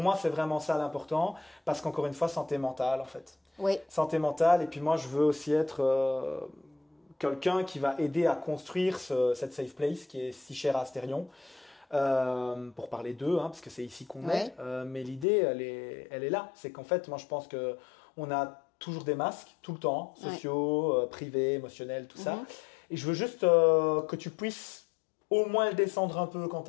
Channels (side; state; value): right; drops out; at 15.2 s